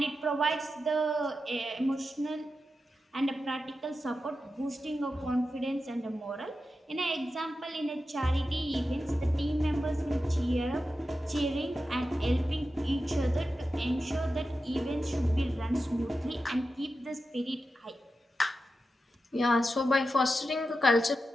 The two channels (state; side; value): normal; both; correlation 0.91